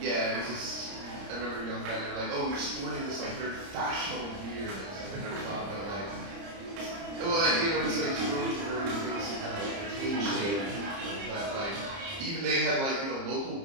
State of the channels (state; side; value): late; left; 30 ms